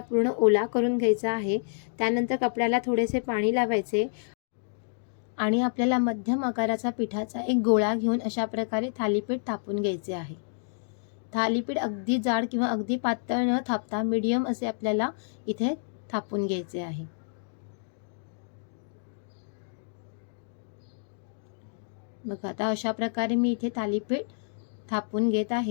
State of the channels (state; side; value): silent; right; digital silence